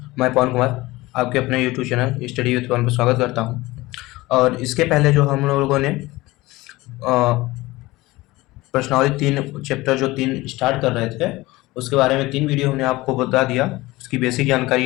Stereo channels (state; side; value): quieter; right; 19.9 dB